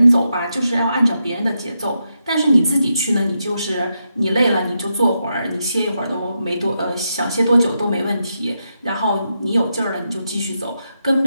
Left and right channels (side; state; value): both; inverted; correlation -0.84